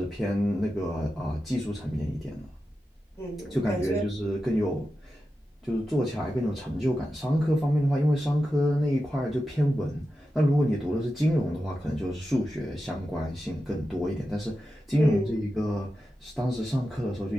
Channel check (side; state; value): both; normal; correlation 0.91